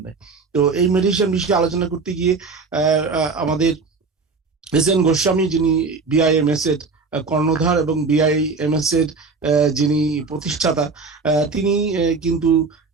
তো এই মেডিয়েশন বিষয়ে আলোচনা করতে গিয়ে আমাদের এস.এন. গোস্বামী, যিনি বিআইএমএস এর কর্ণধার এবং বিআইএমএস এর যিনি প্রতিষ্ঠাতা, তিনি কিন্তু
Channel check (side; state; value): left; quieter; 4.4 dB